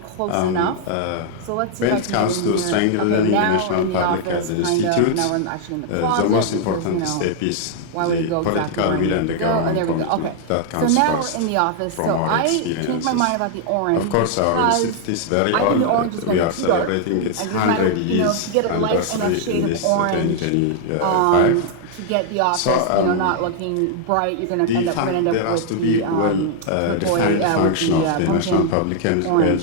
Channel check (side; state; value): both; different; correlation 0.00